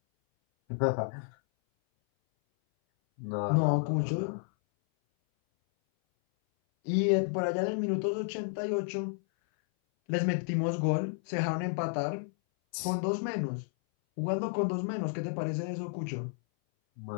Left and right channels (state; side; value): silent; right; 57 dB below the other